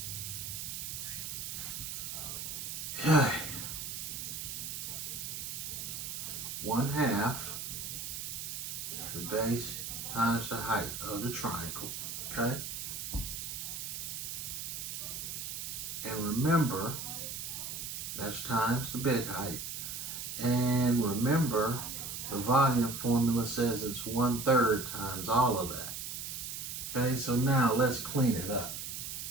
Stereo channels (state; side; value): noise; right; hiss, 5 dB below the sound